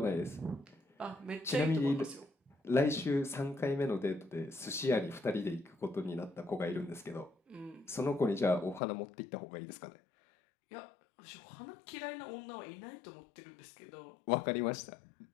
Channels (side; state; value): right; drops out; at 8.8 s